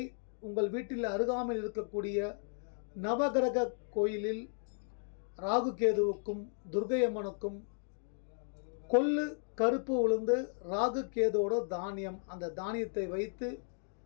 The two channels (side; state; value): right; silent; digital silence